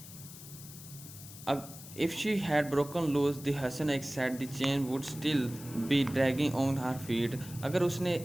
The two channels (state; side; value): noise; left; hiss, 15 dB below the sound